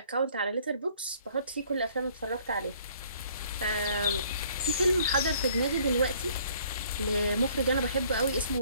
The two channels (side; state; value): both; inverted; correlation -0.59